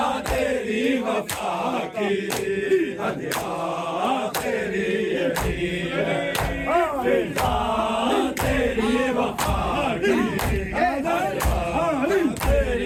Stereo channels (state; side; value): identical; both; correlation 1.00